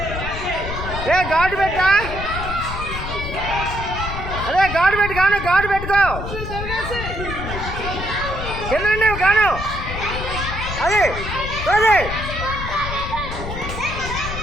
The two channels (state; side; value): noise; left; rumble, 6 dB below the sound